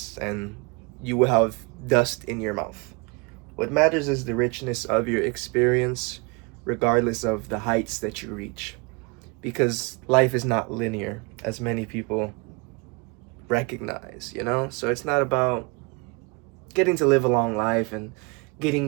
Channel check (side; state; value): left; quieter; 29.3 dB